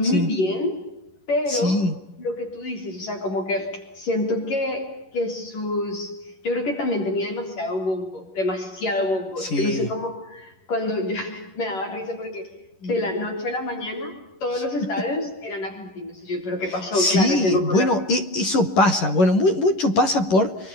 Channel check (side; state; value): right; late; 11 ms